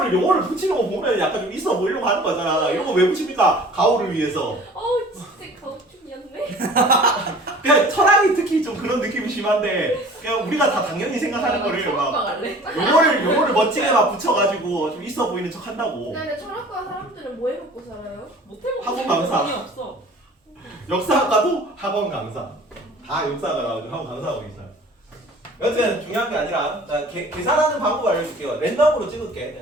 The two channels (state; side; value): normal; both; correlation 0.47